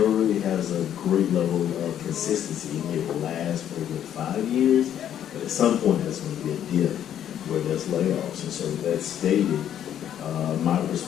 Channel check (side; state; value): right; quieter; 10.2 dB